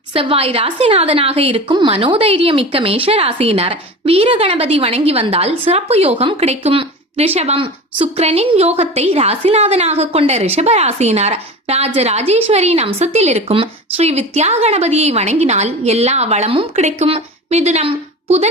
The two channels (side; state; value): both; normal; correlation 0.32